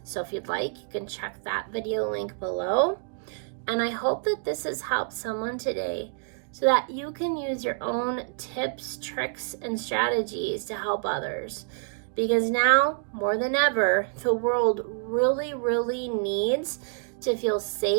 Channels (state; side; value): silent; left; 60 dB below the other